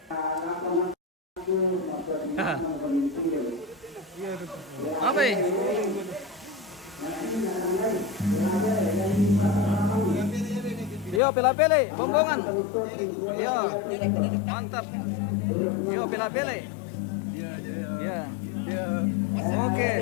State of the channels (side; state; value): right; drops out; at 11.2 s